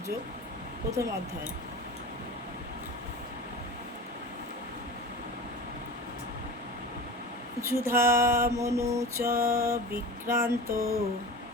যোগ, প্রথম অধ্যায়। যুধা মনু চ বিক্রান্ত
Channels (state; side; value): normal; both; correlation 0.32